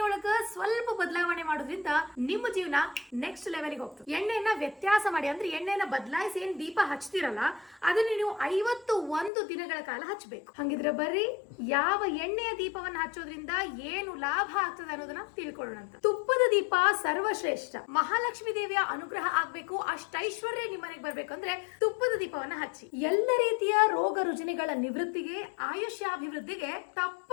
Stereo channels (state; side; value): drops out; right; at 9.3 s